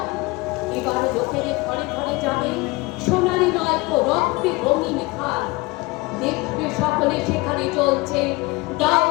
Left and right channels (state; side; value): quieter; right; 23.2 dB